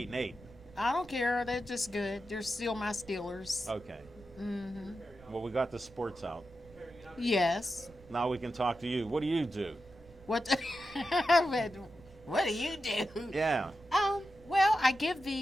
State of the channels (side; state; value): right; noise; rumble, 24 dB below the sound